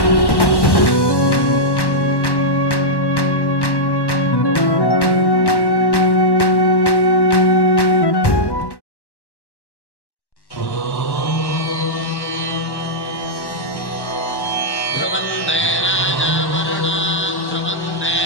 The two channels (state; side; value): late; right; 1.1 ms